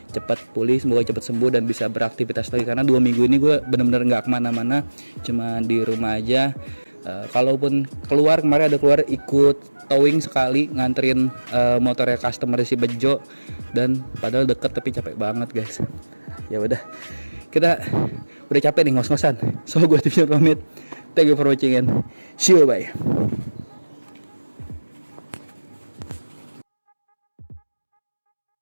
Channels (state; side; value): inverted; both; correlation -1.00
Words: cepat pulih, semoga cepat sembuh dan bisa beraktivitas lagi. Karena 2 minggu ini gue bener-bener nggak kemana-mana, cuma di rumah aja. Kalaupun keluar, kemarin ada keluar ikut towing sekali, nganterin motornya customer si Bejo, dan padahal deket tapi capek banget guys. Ya udah, kita udah capek nih ngos-ngosan. So gue pamit. Thank you for watching and see you, bye.